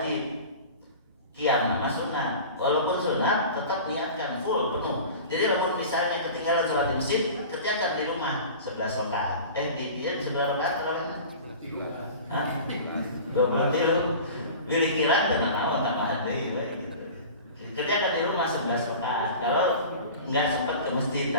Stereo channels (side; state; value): both; inverted; correlation -0.37